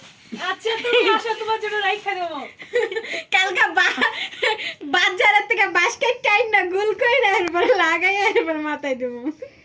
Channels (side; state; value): both; identical; correlation 1.00